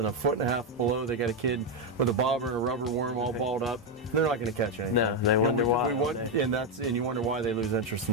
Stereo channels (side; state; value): both; normal; correlation 0.05